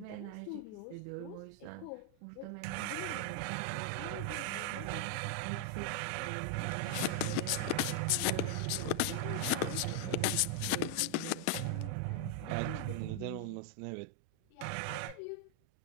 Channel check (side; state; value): both; different; correlation 0.00